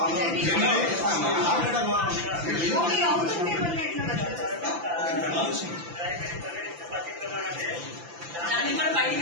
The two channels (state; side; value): late; left; 5.9 ms